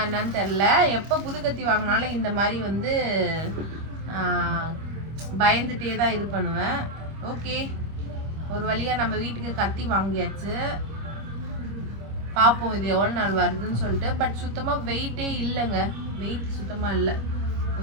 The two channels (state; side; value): late; left; 25 ms